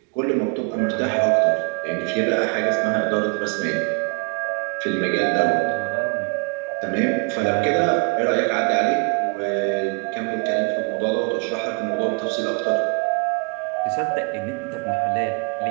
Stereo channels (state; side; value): quieter; left; 35.6 dB